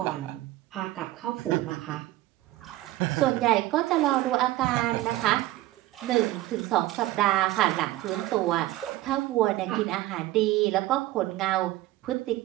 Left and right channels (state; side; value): quieter; left; 16.6 dB